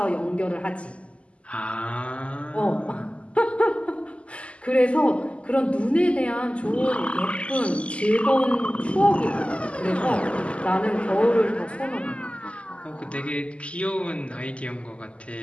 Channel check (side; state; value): right; late; 0.058 ms